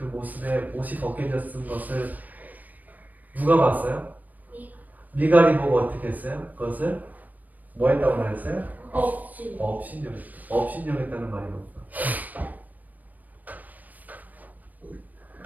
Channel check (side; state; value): left; late; 0.082 ms